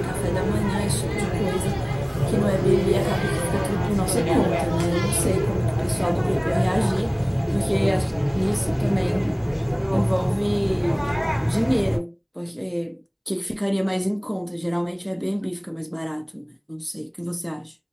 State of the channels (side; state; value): both; identical; correlation 1.00